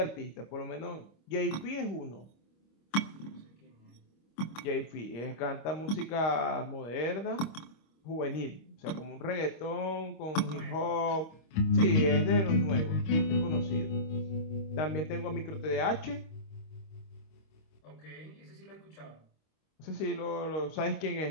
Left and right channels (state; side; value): late; right; 25 ms